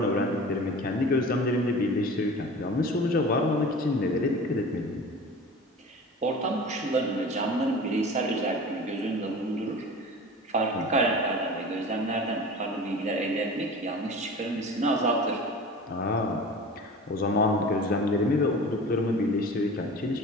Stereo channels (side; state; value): both; normal; correlation 0.37